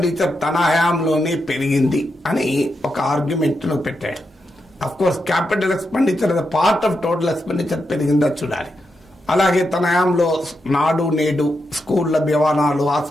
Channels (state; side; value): normal; both; correlation 0.85